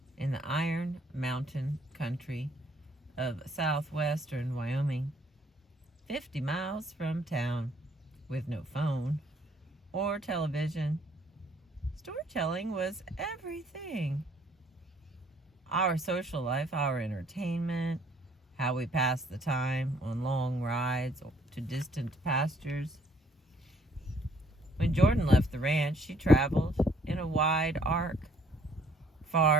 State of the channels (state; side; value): normal; both; correlation 0.63